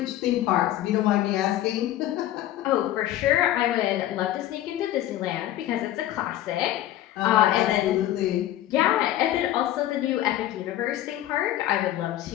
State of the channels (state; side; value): quieter; right; 13.5 dB